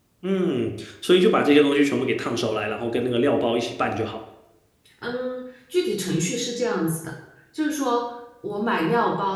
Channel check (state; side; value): identical; both; correlation 1.00